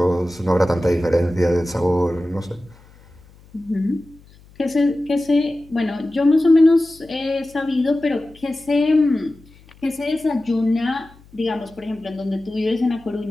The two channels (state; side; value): noise; left; hum, 26 dB below the sound